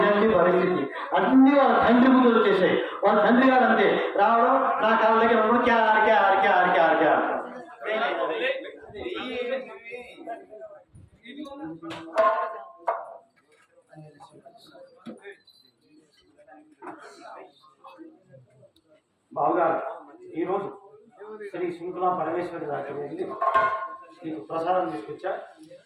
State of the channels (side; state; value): both; identical; correlation 1.00